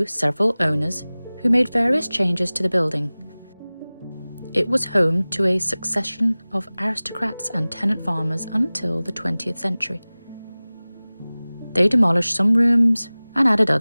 several owners who made various changes to the building. It was home to a succession of aristocrats and tenant farmers until the 20th century. They demolished some rooms and added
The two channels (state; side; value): inverted; both; correlation -0.99